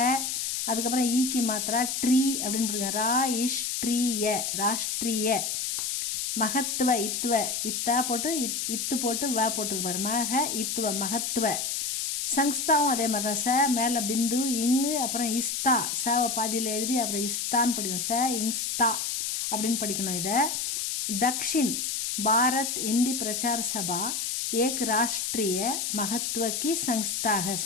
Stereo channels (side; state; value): left; noise; hiss, 1 dB below the sound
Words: அதுக்கப்புறம் ஈக்கி மாத்திரா ட்ரீ அப்படின்னு போடுங்க. ரா இஷ் ட்ரீய, ராஷ்ட்ரிய. மகத்துவ, இத்துவ, இத்தா போட்டு இத்து போட்டு வ போட்டுருக்கு பாரு, மக இத்துவ, மகத்துவ. சங்ஸ்தாவும் அதே மாதிரி தான். ச மேலே பிந்து, இங்கு, அப்புறம் இஸ்தா, சவை பாதியில் எழுதி அப்புறம் இஸ்தான்னு படிக்கணும். ச இங்ஸ்தா அப்படின்னு படிக்கணும். இதை தக்ஷின் பாரத் ஹிந்தி பிரச்சார சபா ஏக் ராஷ்ட்ரிய மகத்துவ கி சங்ஸ்தாக.